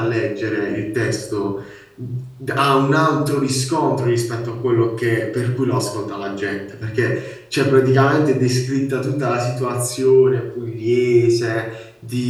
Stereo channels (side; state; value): both; identical; correlation 1.00